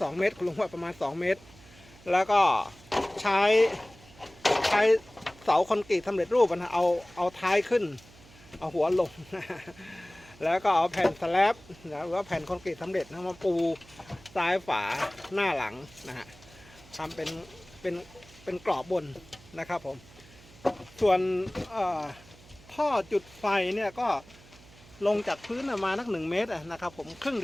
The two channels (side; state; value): right; noise; hum, 23 dB below the sound